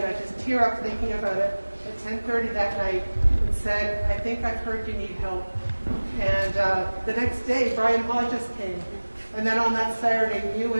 I just tear up thinking about it at 10:30 that night and said, I think I've heard you need help. And the next day, Brian Hodges came. And then on that Saturday, you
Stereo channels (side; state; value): both; inverted; correlation -1.00